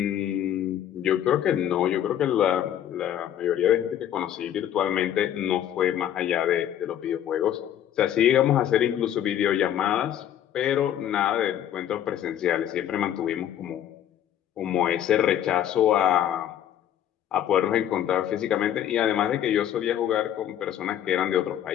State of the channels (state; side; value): quieter; right; 10.7 dB